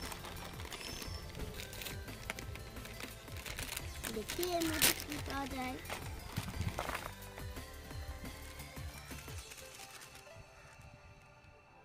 দেখি এর মধ্যে কি পাওয়া যায়।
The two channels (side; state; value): both; identical; correlation 1.00